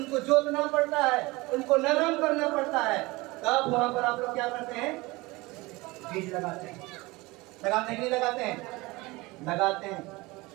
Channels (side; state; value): left; quieter; 22.4 dB